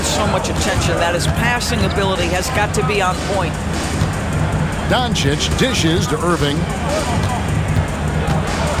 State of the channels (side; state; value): both; identical; correlation 1.00